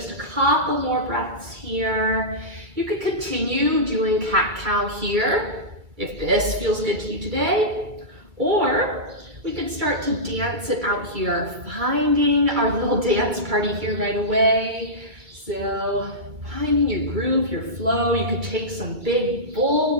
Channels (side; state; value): left; late; 2.2 ms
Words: a couple more breaths here. You could continue doing cat-cow here, if this feels good to you today, or we could start to dance it out here, finding our little dance party here right away. So finding your groove, your flow. You could take some big